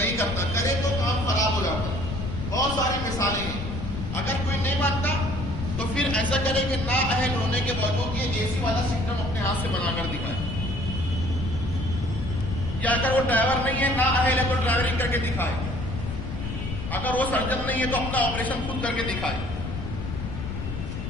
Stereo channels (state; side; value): noise; left; rumble, 5 dB below the sound